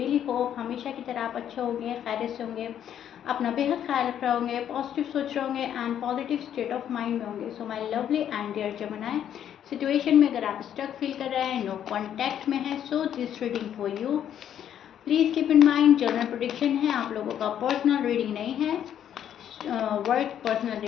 होप हमेशा की तरह आप अच्छे होंगे, खैरियत से होंगे, अपना बेहद ख्याल रख रहे होंगे, पॉजिटिव सोच रहे होंगे and positive state of mind में होंगे। So my lovely and dear जमनाई, सिचुएशन में अगर आप स्टक फील कर रहे हैं, नो कॉन्टैक्ट में है, so this reading for you. Please keep in mind general prediction है, आप लोगों का पर्सनल रीडिंग नहीं है। वर्क पर्सनल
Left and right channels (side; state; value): right; quieter; 9.9 dB